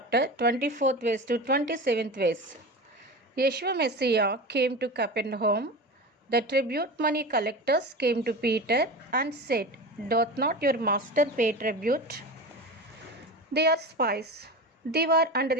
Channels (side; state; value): both; normal; correlation 0.28